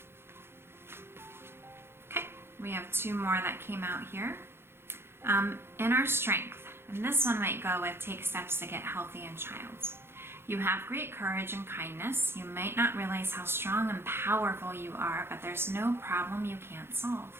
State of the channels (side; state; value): left; late; 0.11 ms